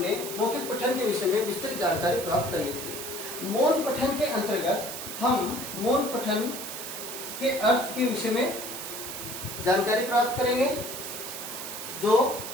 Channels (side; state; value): right; noise; hiss, 8 dB below the sound